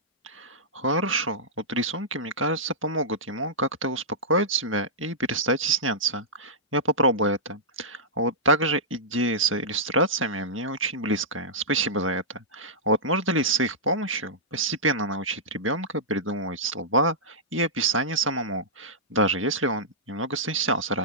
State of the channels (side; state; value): both; normal; correlation -0.14